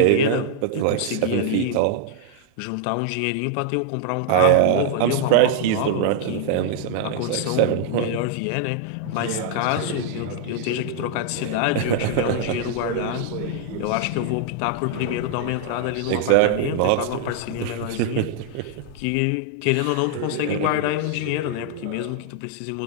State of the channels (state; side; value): different; both; correlation -0.01